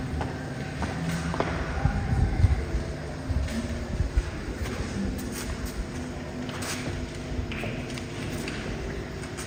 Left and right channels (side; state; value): both; identical; correlation 1.00